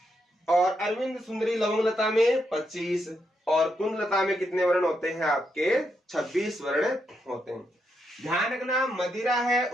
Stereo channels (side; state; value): both; normal; correlation 0.81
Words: और अरविंद सुंदरी लवंग लता में 25 और कुंद लता में कितने वर्ण होते हैं आपके, 26 वर्ण होते हैं। ध्यान रखना मदिरा है